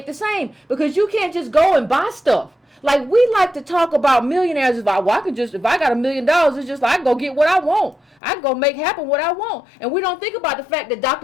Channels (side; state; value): right; drops out; at 8.2 s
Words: the same, because you can't just go and buy stuff. Like, we like to talk about millionaires as like, well, if I got $1 million, it's just like I can go get what I want. I can go make happen what I want. And we don't think about the fact that